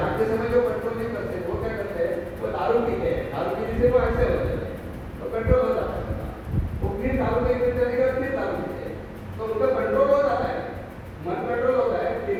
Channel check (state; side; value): identical; both; correlation 1.00